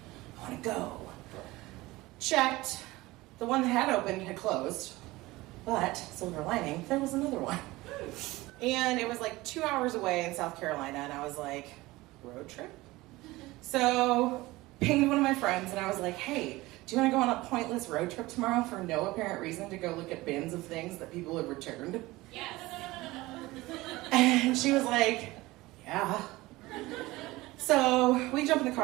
I want to go. Checked. The one that had opened had closed. But, silver lining, there was another one. And it was like 2 hours away in South Carolina. And I was like, road trip? So, pinged one of my friends and I was like, hey, do you want to go on a pointless road trip tomorrow for no apparent reason to go look at bins of things that people have returned? Yes. And she was like, yeah. So, we jump in the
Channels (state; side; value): quieter; left; 19.8 dB